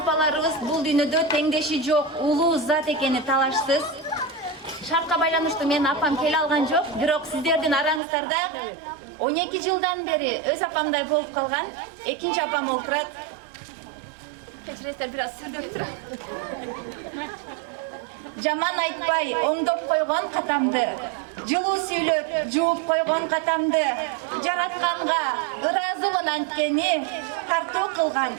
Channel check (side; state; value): left; drops out; at 8.0 s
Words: бул дүйнөдө теңдеши жок, улуу зат экени талашсыз. Шартка байланыштуу менин апам келе алган жок, бирок сиздердин араңыздарда 12 жылдан бери өз апамдай болуп калган экинчи апам олтурат. Кечиресиздер, бир аз сүрдөп турам. Жаман айтпай, оңдоп койгон катамды, жылуу сүйлөп, жууп койгон катамды, жаратканга ыраазымын анткени, тартуу кылган